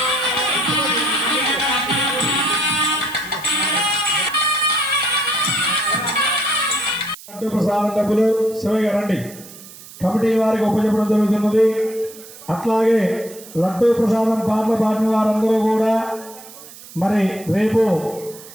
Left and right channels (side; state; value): right; noise; hiss, 18 dB below the sound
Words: ప్రసాదం డబ్బులు శివయ్య రండి. కమిటీ వారికి ఉపయోగపడడం జరుగుతున్నది. అట్లాగే లడ్డు ప్రసాదం పాటలు పాడిన వారందరూ కూడా మరి రేపు